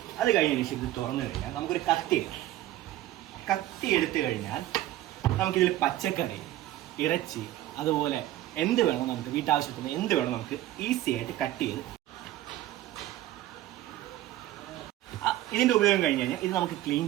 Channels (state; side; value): quieter; left; 14.5 dB